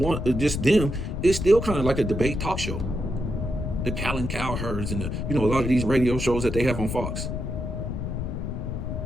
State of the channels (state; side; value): noise; left; rumble, 3 dB below the sound